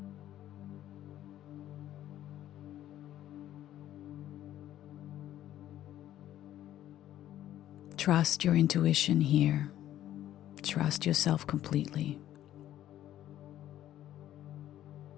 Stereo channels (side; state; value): right; quieter; 12.5 dB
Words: Trust your intuition here. Trust yourself completely.